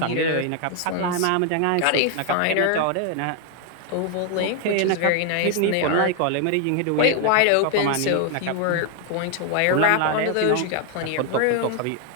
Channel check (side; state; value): both; different; correlation 0.00